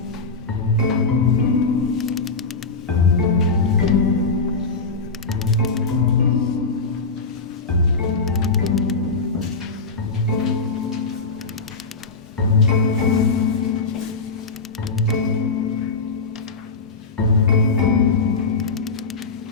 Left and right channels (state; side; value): quieter; right; 4.1 dB